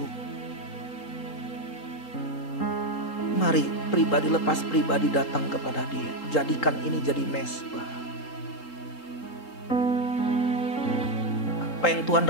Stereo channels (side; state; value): right; late; 3.8 ms